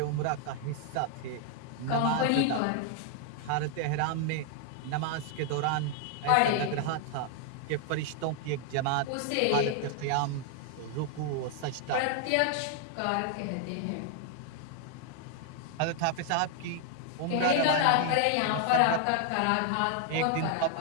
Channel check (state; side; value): different; both; correlation 0.00